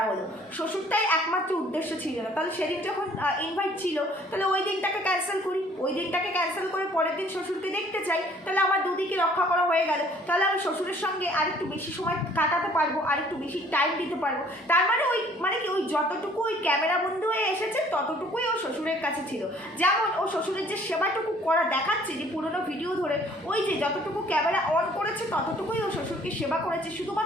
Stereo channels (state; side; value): normal; both; correlation 0.57